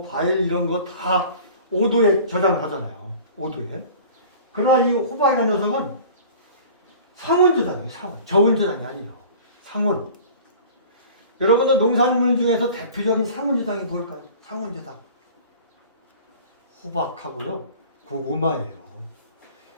과일 이런 거 다 5도에 저장을 하잖아요. 5도에. 그러나 이 호박이라는 녀석은 상온 저장이에요. 저온 저장이 아니에요. 상온. 여러분들 농산물 중에서 대표적인 상온 저장이 뭘까요? 상온 저장. 호박하고요, 고구마예요.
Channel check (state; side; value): inverted; both; correlation -0.43